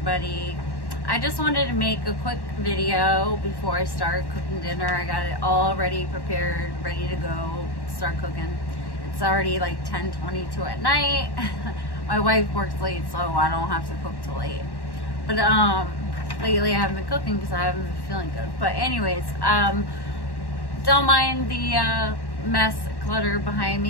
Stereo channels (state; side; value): late; right; 1.1 ms